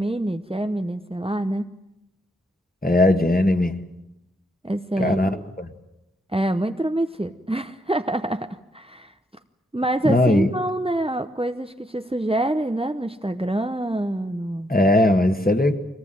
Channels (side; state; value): both; normal; correlation 0.75